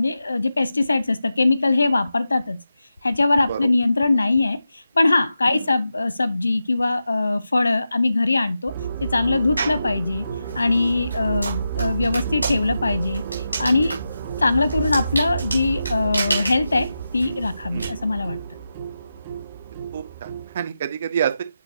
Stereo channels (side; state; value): both; inverted; correlation -0.90